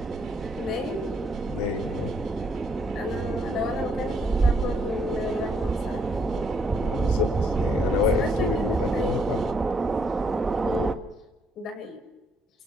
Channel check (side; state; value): both; normal; correlation 0.71